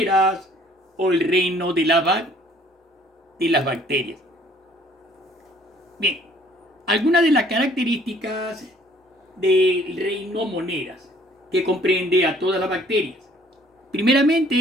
o el reino de las bacterias. Bien, algunas de las características del reino moneras que comprende a todas las bacterias.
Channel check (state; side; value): normal; both; correlation 0.58